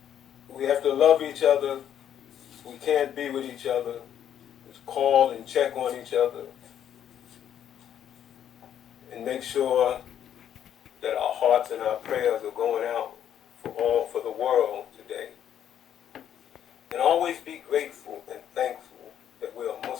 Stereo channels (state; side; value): quieter; right; 9.9 dB